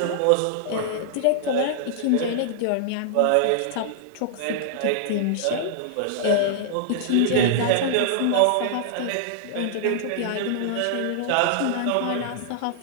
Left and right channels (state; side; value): different; both; correlation -0.01